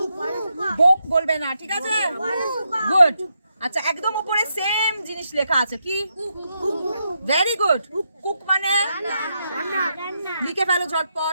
বুক বলবে না, ঠিক আছে? গুড। আচ্ছা, একদম উপরে সেম জিনিস লেখা আছে, কি? Very good. কুক মানে লিখে ফেলো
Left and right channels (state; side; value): inverted; both; correlation -0.82